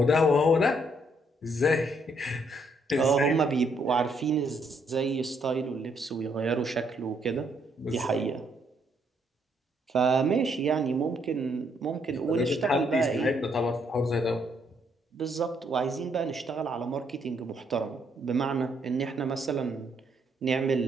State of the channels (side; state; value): both; normal; correlation 0.71